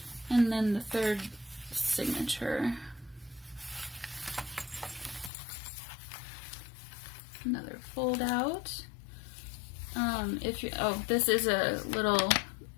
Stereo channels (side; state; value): right; drops out; at 5.3 s